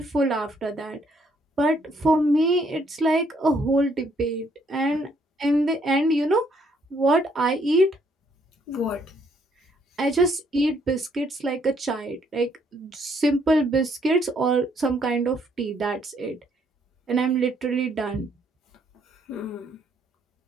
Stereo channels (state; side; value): normal; both; correlation 0.69